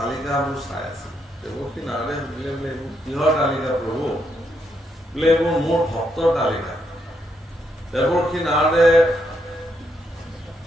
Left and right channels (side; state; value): both; normal; correlation 0.78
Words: চাই আছিল দেৱৰ্ষি নাৰদে সুধিলে বোলে এইবোৰ কিহৰ তালিকা প্ৰভু বোলে এইবোৰ মোৰ ভক্তৰ তালিকা দেৱৰ্ষি নাৰদে